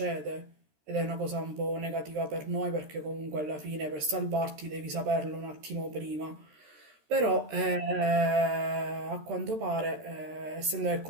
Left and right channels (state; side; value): late; left; 13 ms